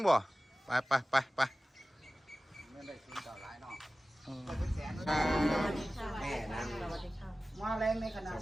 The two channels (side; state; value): both; normal; correlation 0.96